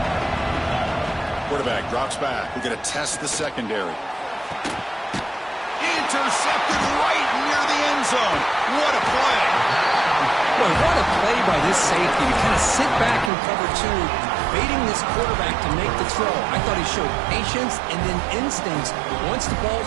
Quarterback drops back. We're going to test the secondary. Intercepted right near the end zone. What a play. Boy, what a play by this safety to kind of sit back in cover two, baiting this quarterback to make the throw. I thought he showed patience and then instincts once the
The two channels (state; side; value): drops out; left; at 13.3 s